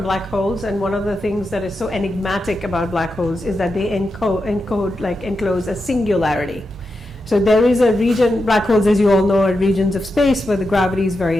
black holes, and one of the things that is so enigmatic about black holes is that they enclose a singularity. So there is a region, black holes, as you all know, are regions of space where the gravity is very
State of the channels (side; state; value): both; normal; correlation 0.88